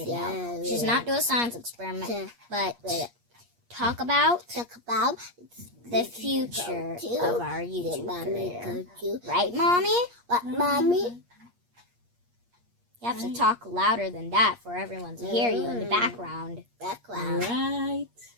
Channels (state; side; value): late; left; 8.5 ms